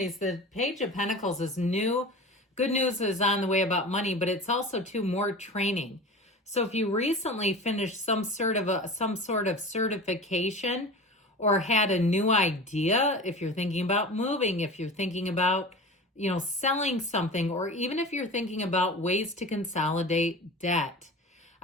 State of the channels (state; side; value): normal; both; correlation 0.33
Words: The Page of Pentacles is new. Good news is on the way about money, but it's also more training. So if you recently finished some sort of certification or had a new idea, if you're thinking about moving, if you're thinking about selling something, or even if you're thinking about ways to consolidate debt,